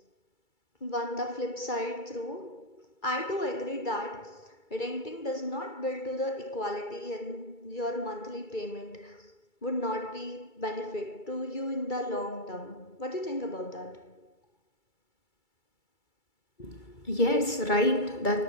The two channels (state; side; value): late; right; 2.3 ms